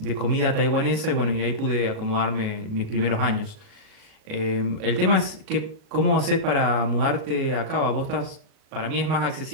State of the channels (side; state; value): left; late; 37 ms